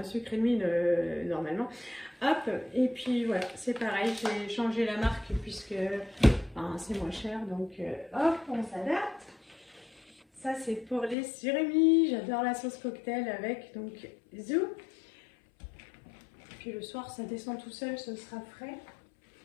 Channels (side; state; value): right; drops out; at 11.2 s